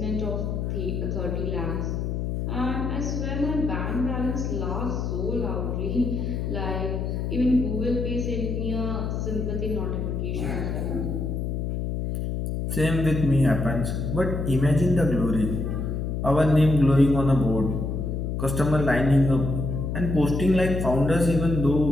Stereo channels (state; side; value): noise; left; hum, 2 dB below the sound